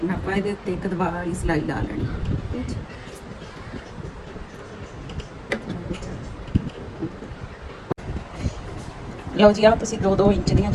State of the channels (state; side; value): identical; both; correlation 1.00